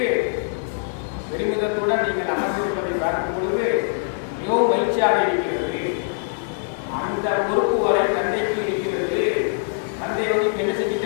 பெருமிதத்துடன் நீங்கள் அமர்ந்திருப்பதை பார்க்கும் பொழுது மிகவும் மகிழ்ச்சியாக இருக்கிறது. அந்த பொறுப்பு வரை தந்தைக்கு இருக்கிறது. தந்தை வந்து என்ன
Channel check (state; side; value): silent; right; digital silence